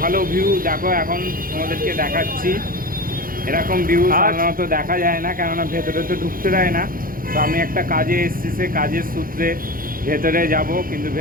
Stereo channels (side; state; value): left; late; 0.41 ms